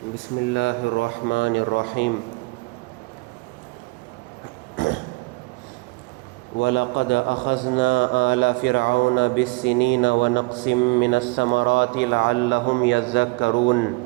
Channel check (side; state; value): left; quieter; 25.8 dB